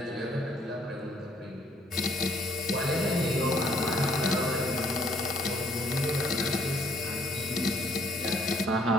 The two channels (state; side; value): normal; both; correlation 0.64